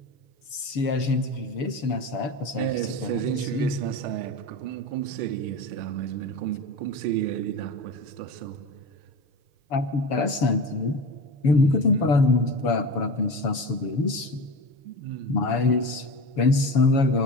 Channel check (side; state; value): right; late; 7.1 ms